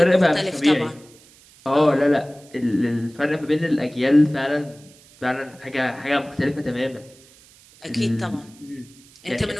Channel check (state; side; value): noise; right; hiss, 26 dB below the sound